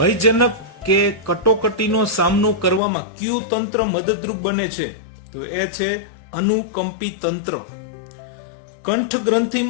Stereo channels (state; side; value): drops out; right; at 2.8 s